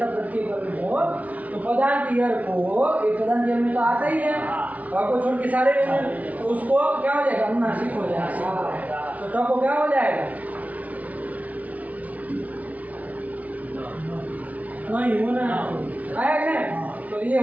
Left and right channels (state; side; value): late; left; 0.070 ms